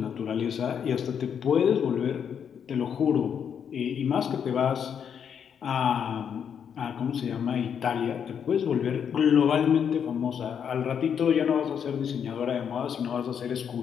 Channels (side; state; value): right; quieter; 7.8 dB